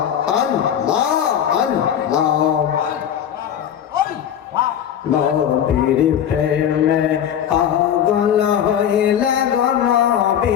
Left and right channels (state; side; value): quieter; right; 9.5 dB